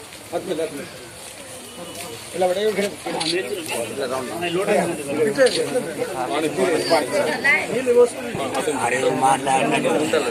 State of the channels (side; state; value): both; identical; correlation 1.00